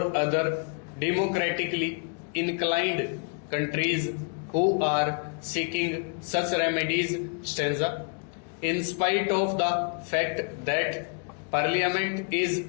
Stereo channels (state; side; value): quieter; right; 39.9 dB